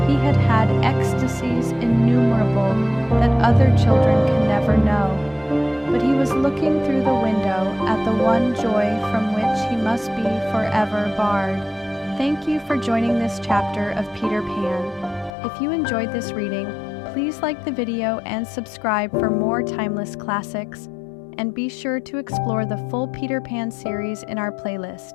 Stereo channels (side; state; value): right; drops out; at 15.3 s